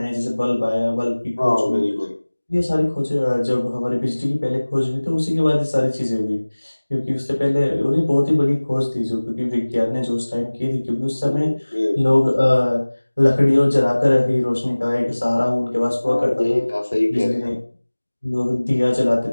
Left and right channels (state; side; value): inverted; both; correlation -1.00